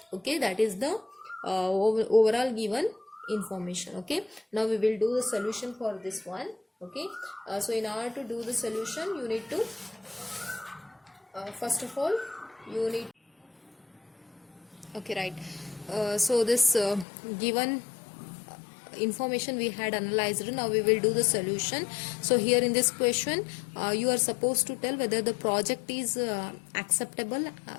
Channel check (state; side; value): drops out; right; at 17.1 s